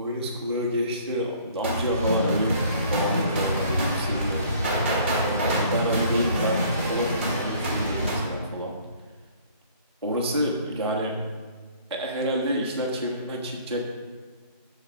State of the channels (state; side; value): inverted; both; correlation -0.55